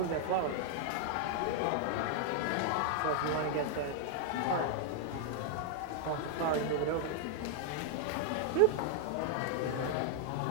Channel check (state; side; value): different; both; correlation 0.00